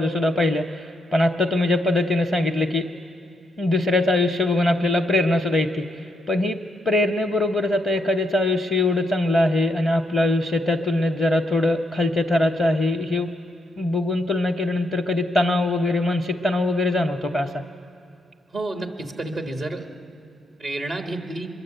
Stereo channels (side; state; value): both; normal; correlation 0.79